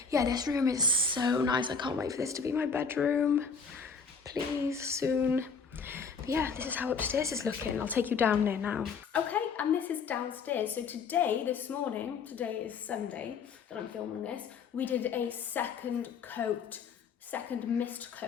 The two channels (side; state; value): right; quieter; 5.5 dB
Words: yeah, this room is so nice. I can't wait for this to be my bedroom. Please, soon. But yeah, this is how upstairs is looking. I'll take you down there now. Okay, and this is downstairs. So this morning, today is Sunday that I'm filming this, we did a second mist